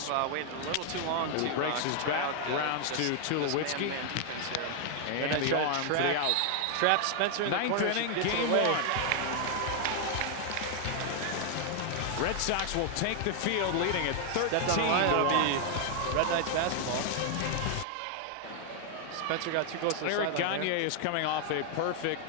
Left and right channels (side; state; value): both; different; correlation 0.00